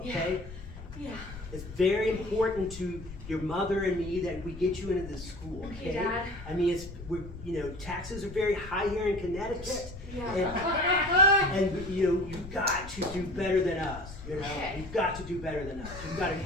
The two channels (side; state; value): left; noise; rumble, 13 dB below the sound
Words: okay? Yeah. It's very important to your mother and me that we get you into this school, okay? Okay, Dad. I mean, taxes are very high here in Connecticut. Yeah. And you've got to do better than us, Okay. You've got to do better than us. You've got to